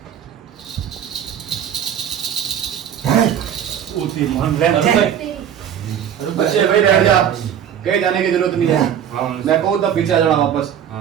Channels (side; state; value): left; quieter; 9.2 dB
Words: बच्चे भाई बैठ जा, कहीं जाने की जरूरत नहीं है। हाँ मैं कहूँ तब पीछे आ जाना वापस।